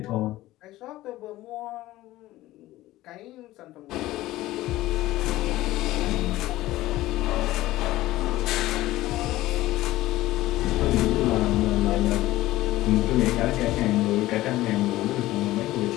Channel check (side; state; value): right; quieter; 16.5 dB